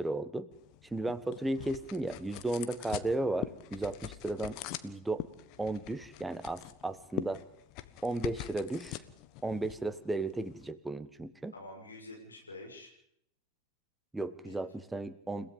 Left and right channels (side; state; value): both; normal; correlation 0.77